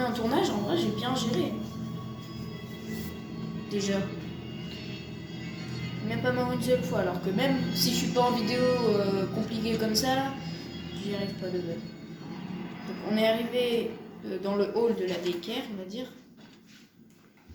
en tournage, en vrai j'ai bien géré. Déjà. Même pas mort une seule fois, alors que même si je suis pas en vidéo compliquée comme ça, j'y arrive pas de base. Donc on est arrivé dans le hall de la daycare, on va dire.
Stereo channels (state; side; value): identical; both; correlation 1.00